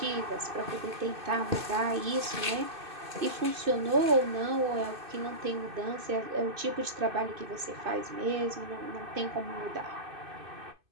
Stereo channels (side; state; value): left; late; 2.5 ms